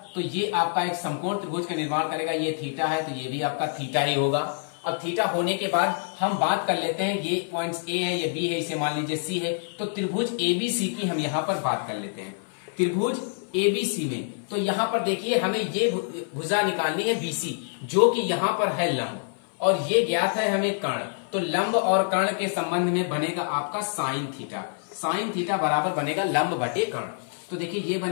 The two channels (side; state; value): right; silent; 57 dB below the other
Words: तो ये आपका एक समकोण त्रिभुज का निर्माण करेगा। ये थीटा है तो ये भी आपका थीटा ही होगा। अब थीटा होने के बाद हम बात कर लेते हैं, ये पॉइंट्स ए है ये बी है, इसे मान लीजिए सी है, तो त्रिभुज एबीसी की हम यहाँ पर बात कर लेते हैं। त्रिभुज एबीसी में तो यहाँ पर देखिए हमें ये भुजा निकालनी है बीसी जो कि यहाँ पर है लंब और ये ज्ञात है हमें कर्ण। तो लंब और कर्ण के संबंध में बनेगा आपका साइन थीटा। साइन थीटा बराबर बनेगा लंब बटे कर्ण। तो देखिए ये